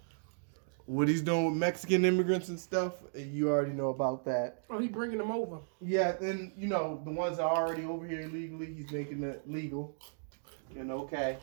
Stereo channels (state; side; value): silent; left; digital silence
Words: What he's doing with Mexican immigrants and stuff, you already know about that. Oh, he's bringing them over. Yeah, and, the ones that are already over here illegally, he's making it legal. Okay.